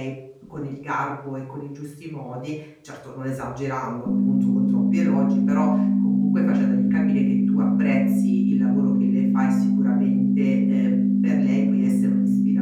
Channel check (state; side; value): identical; both; correlation 1.00